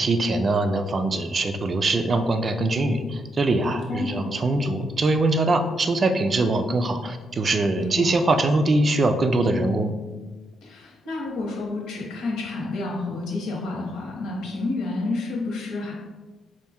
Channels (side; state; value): both; normal; correlation 0.80